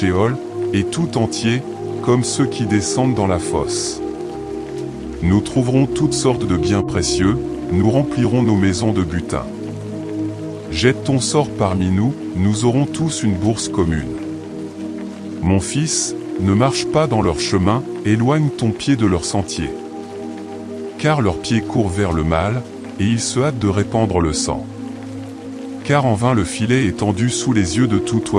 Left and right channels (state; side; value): identical; both; correlation 1.00